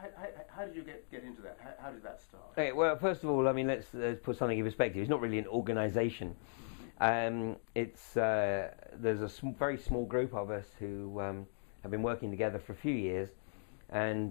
How did you get into that? How did that start? Okay, well, first of all, I mean, let's put something in perspective. It's not really an organisation. It's there's a very small group of us who have been working together for a few years,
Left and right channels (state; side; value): silent; right; digital silence